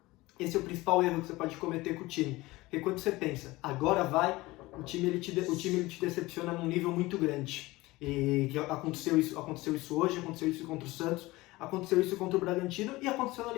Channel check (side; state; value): right; quieter; 20.1 dB